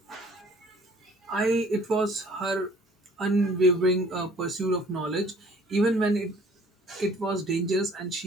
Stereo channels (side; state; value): both; normal; correlation 0.54